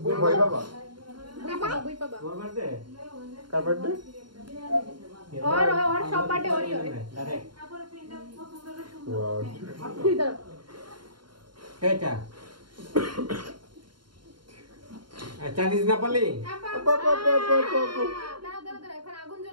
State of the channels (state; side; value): late; left; 0.72 ms